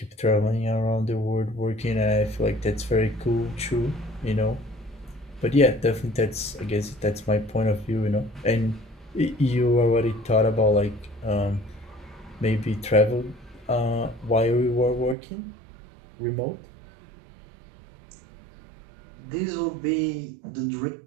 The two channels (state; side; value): drops out; left; at 15.2 s